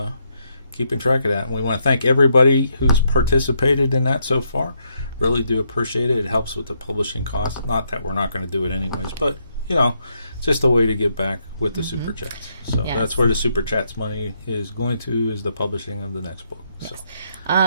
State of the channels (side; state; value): both; inverted; correlation -0.77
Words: keeping track of that. And we want to thank everybody who's participated in that so far. Really do appreciate it. It helps with the publishing costs. Not that we're not going to do it anyways, but it's just a way to give back with the super chats. So that's where the super chats money is going to, is the publishing of the next book.